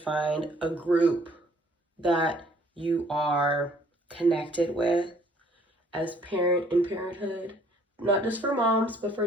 a group that you are connected with as parent in parenthood. Not just for moms, but for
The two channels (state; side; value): normal; both; correlation 0.60